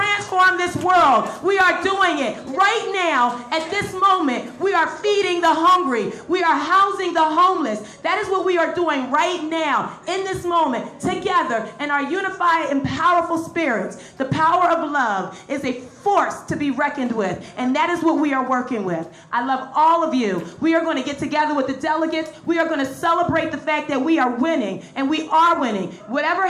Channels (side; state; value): both; identical; correlation 1.00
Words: this world. We are doing it right now. At this moment, we are feeding the hungry. We are housing the homeless. That is what we are doing right now, in this moment, together in our unified and powerful spirits. The power of love is a force to be reckoned with, and that is what we are working with. I love all of you. We are going to get together with the delegates. We are going to celebrate the fact that we are winning, and we are winning. Whatever